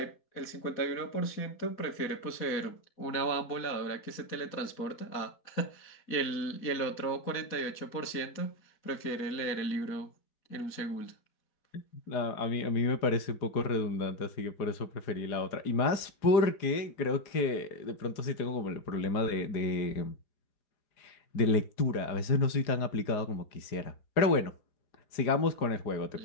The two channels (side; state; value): right; late; 4.9 ms